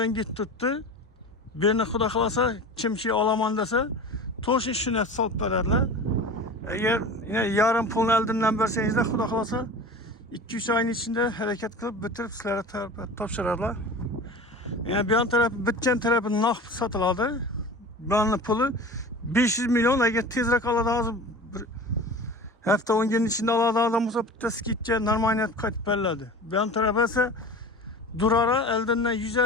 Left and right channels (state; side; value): normal; both; correlation 0.35